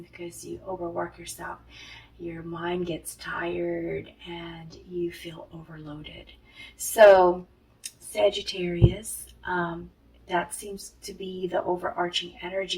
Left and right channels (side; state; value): both; identical; correlation 1.00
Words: because you overwork yourself, your mind gets tired and you feel overloaded. So, Sagittarius, that seems to be the overarching